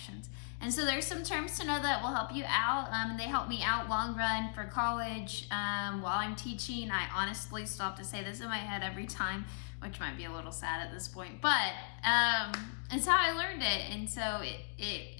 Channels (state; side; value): silent; right; digital silence